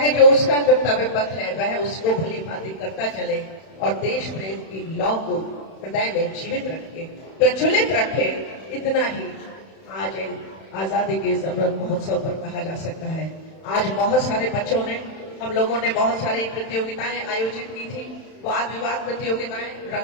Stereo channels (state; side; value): late; right; 31 ms